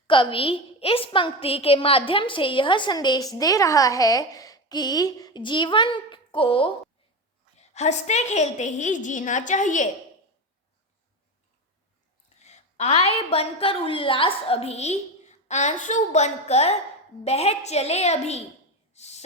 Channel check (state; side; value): normal; both; correlation 0.20